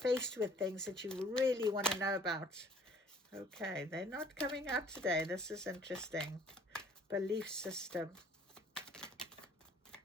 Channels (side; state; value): both; normal; correlation 0.56